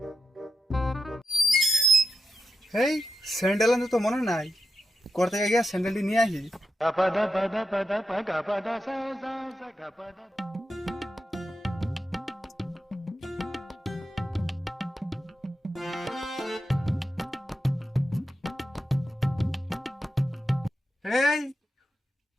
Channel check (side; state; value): both; normal; correlation 0.88